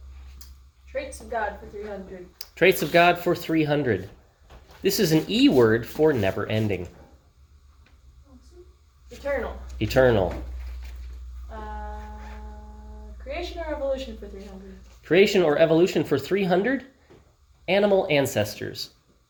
Traits of God for 300. Traits of God for 300. This is an E word for never ending. Eternal. Eternal. Creation or evolution for 300. Creation or evolution for 300. Animal ancestors.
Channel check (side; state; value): both; identical; correlation 1.00